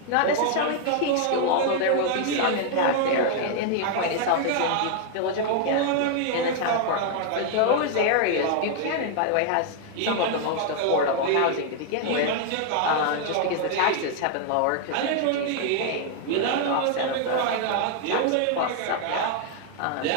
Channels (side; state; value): both; different; correlation 0.00